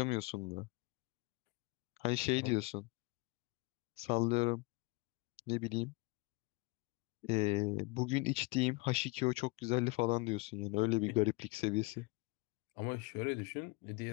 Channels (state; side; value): quieter; right; 26.0 dB